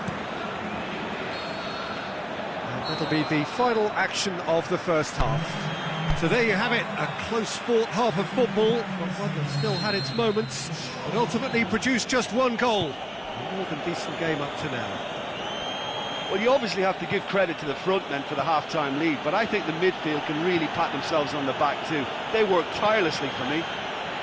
And that'll be the final action of the first half. So there you have it, a close-fought half of football, but one that still had its moments, but ultimately produced just one goal. A more than decent game up to now. Well, you obviously have to give credit to the front men for the half-time lead, but I think the midfield can really pat themselves on the back too. They worked tirelessly for me.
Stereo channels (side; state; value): both; identical; correlation 1.00